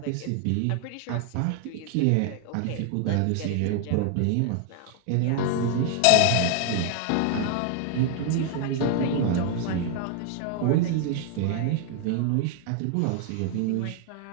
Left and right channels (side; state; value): both; different; correlation 0.00